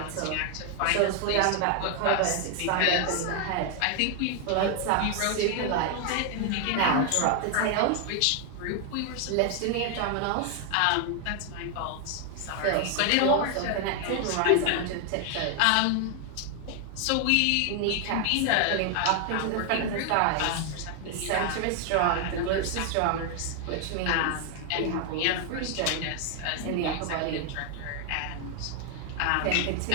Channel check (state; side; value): different; both; correlation 0.00